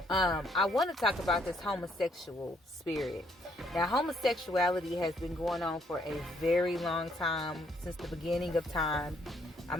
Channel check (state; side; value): normal; both; correlation 0.69